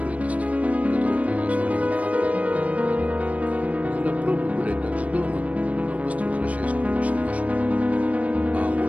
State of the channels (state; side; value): late; left; 0.067 ms